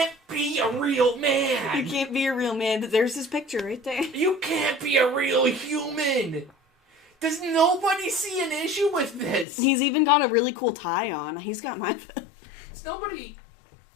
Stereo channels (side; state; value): right; drops out; at 9.5 s